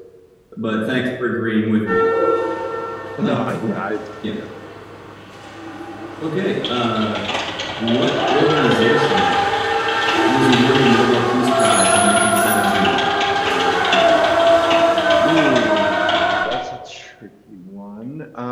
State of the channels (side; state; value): both; identical; correlation 1.00